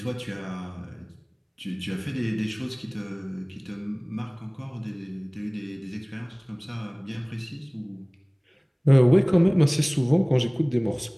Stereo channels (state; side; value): identical; both; correlation 1.00